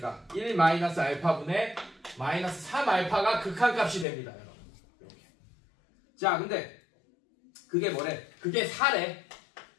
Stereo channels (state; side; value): drops out; right; at 4.0 s